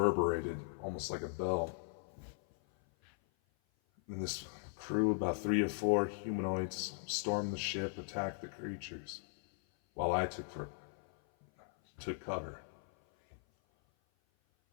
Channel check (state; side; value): silent; right; 52 dB below the other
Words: almost like a bell. And this crew, about 3 or 4 humanoids, stormed the ship, attacked the creatures, while I took cover.